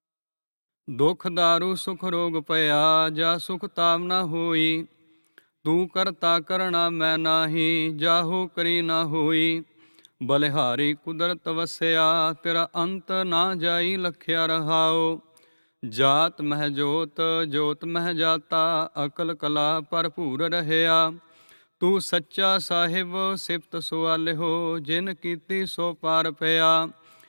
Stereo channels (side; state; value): both; inverted; correlation -1.00